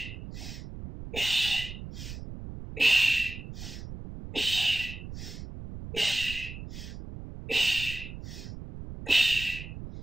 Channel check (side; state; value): right; noise; rumble, 10 dB below the sound